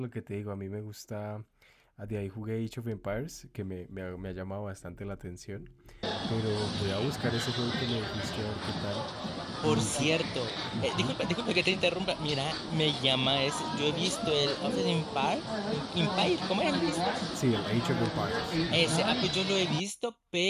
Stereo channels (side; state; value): both; identical; correlation 1.00